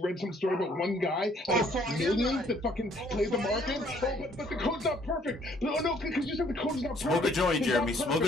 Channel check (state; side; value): normal; both; correlation 0.63